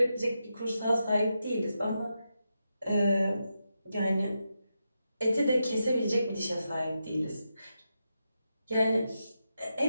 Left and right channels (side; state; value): both; inverted; correlation -0.87